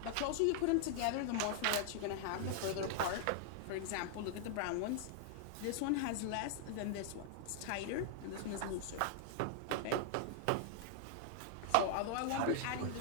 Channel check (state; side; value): different; both; correlation -0.01